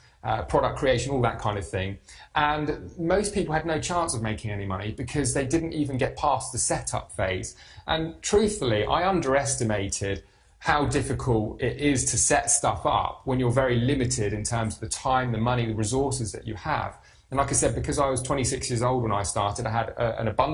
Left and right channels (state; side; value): identical; both; correlation 1.00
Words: product creation, all that kind of thing. And most people had no chance of making any money because they didn't even get past the setup phase. And truthfully, I underestimated how difficult it is to set stuff up when you're very limited in terms of the time, the money, the resources that you have. And like I said, because I was 26 years old when I started, I had an